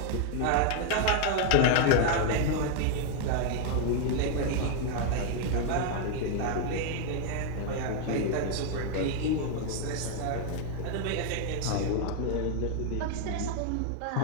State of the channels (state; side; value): different; both; correlation 0.00